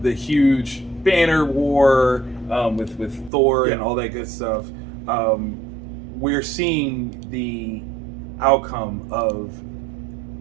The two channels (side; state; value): left; drops out; at 3.3 s